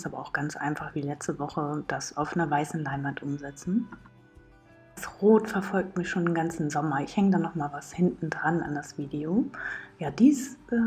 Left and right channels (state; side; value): identical; both; correlation 1.00